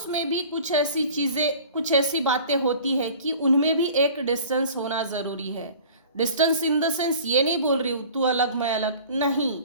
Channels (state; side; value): inverted; both; correlation -0.44